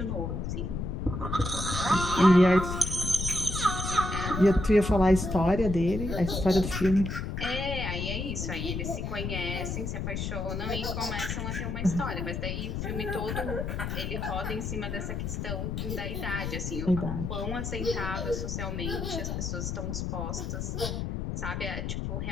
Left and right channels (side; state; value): left; noise; rumble, 3 dB below the sound